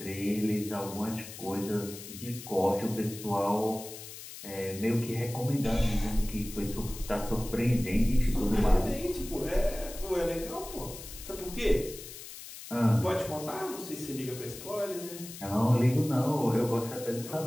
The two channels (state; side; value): noise; left; hiss, 13 dB below the sound